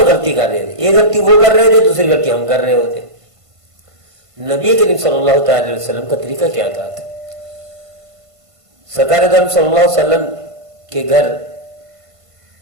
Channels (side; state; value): left; late; 1.5 ms